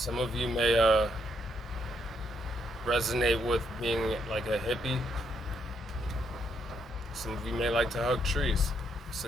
of you may resonate with being like a hippie, some of you may like to hug trees. It's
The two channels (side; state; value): both; normal; correlation 0.75